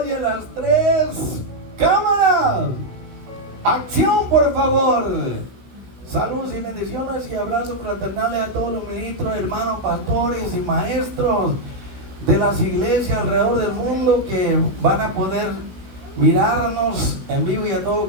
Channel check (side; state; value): left; late; 16 ms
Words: y a las 3. ¡Cámara! ¡Acción, por favor! Saludos y bendiciones y abrazos fraternales a todos los ministros, hermanos, pastores y maestros de las iglesias alrededor del mundo que van a poder mirarnos en vivo y a todo